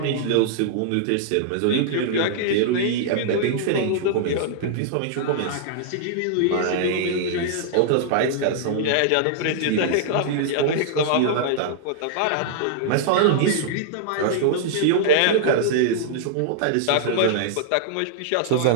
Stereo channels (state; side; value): different; both; correlation -0.01